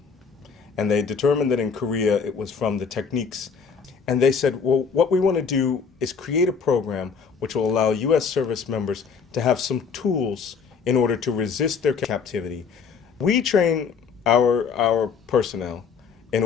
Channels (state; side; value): quieter; right; 5.9 dB